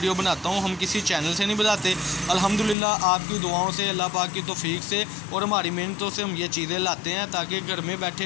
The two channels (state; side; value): drops out; right; at 2.8 s